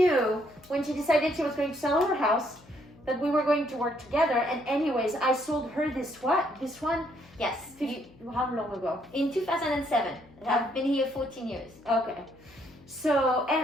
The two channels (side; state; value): left; noise; hum, 25 dB below the sound